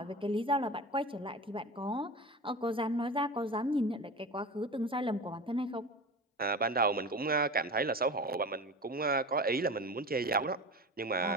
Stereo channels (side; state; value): both; normal; correlation 0.31